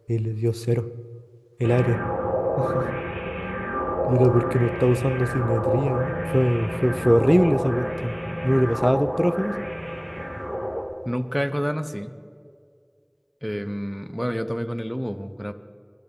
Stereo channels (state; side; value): identical; both; correlation 1.00